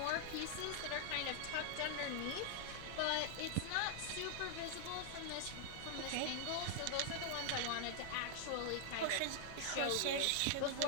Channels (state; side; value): different; both; correlation 0.00